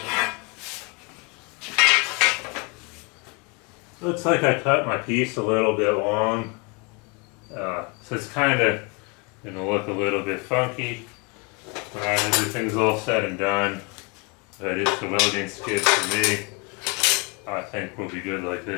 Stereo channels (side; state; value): right; quieter; 30.9 dB